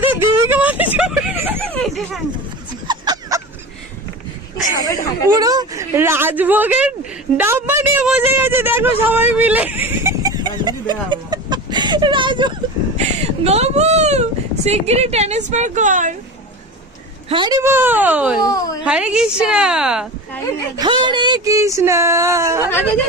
দেবীকে মাঝে পুরো রাজভোগের ডাব্বা নিয়ে বসে গেছে, দেখো সবাই মিলে। গবু শিগগিরই ট্রান্সফার কর। হরি বল, হরে কৃষ্ণ, হরে কৃষ্ণ।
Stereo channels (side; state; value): both; normal; correlation 0.29